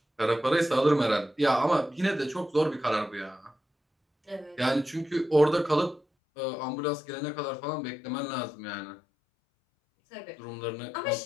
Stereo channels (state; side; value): drops out; right; at 6.0 s